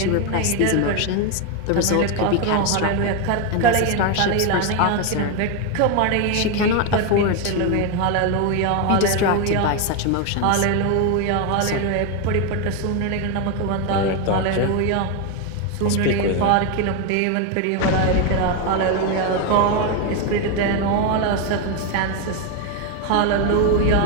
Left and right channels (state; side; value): different; both; correlation 0.01